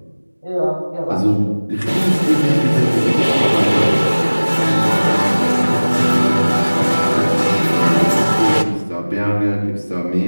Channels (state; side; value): inverted; both; correlation -1.00